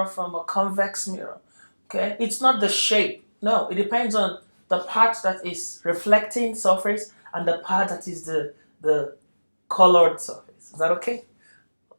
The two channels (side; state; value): both; inverted; correlation -1.00